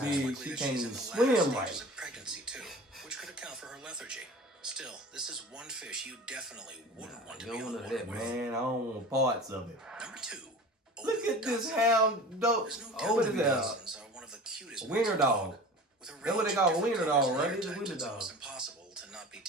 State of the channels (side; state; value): both; normal; correlation 0.37